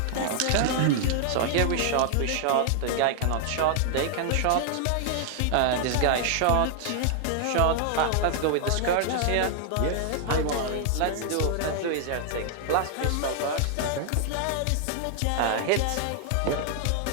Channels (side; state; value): both; different; correlation 0.00